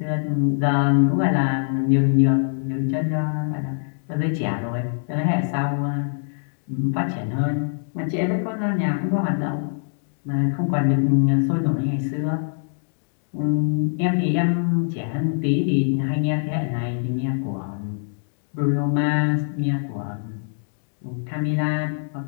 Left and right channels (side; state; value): right; silent; digital silence